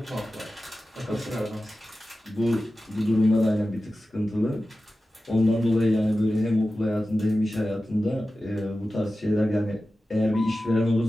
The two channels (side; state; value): both; normal; correlation 0.94